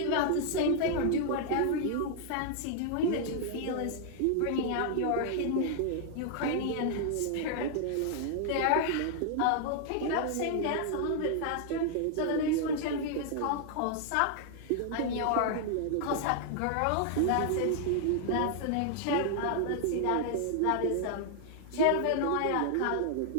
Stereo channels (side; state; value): both; different; correlation -0.01